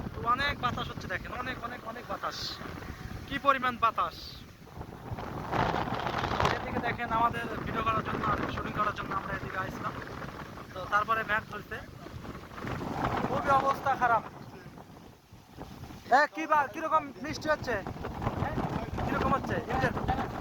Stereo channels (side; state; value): both; identical; correlation 1.00